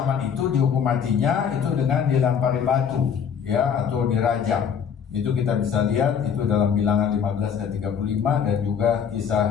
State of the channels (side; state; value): right; quieter; 7.4 dB